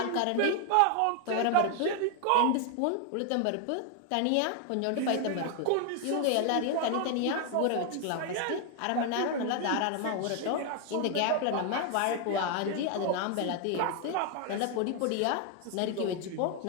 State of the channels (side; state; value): both; different; correlation 0.00